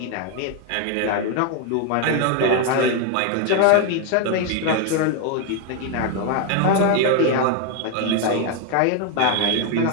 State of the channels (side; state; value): both; different; correlation 0.01